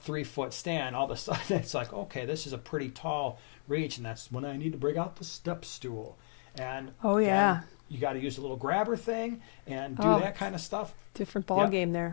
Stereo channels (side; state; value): right; silent; digital silence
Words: 3-foot stand, all of a sudden it's like, okay, this is a pretty tall reach, and that's when I need to bring out the step stool. And Oh, again, yeah. you got to use a little grabber thing and do that kind of stuff. Different ball Yep. game